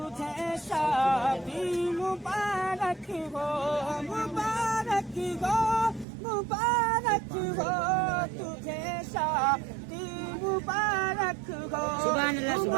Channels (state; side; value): drops out; left; at 6.1 s